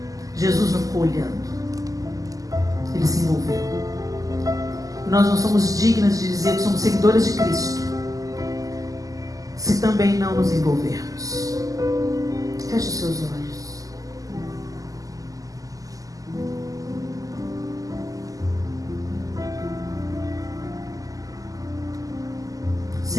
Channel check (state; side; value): late; left; 0.17 ms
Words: Jesus não ficou olhando, ele se envolveu. E nós não somos dignas de dizer que somos seguidores de Cristo se também não nos envolvermos. Feche os seus olhos.